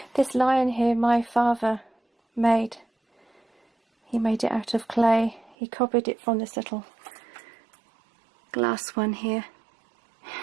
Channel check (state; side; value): drops out; left; at 5.6 s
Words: This lion here my father made. He made it out of clay. He copied it from this little glass one here.